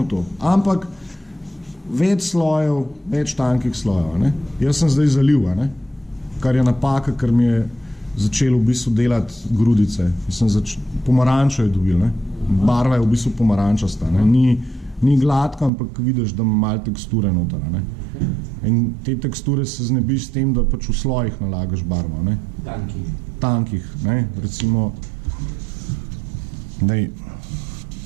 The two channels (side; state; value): left; drops out; at 15.7 s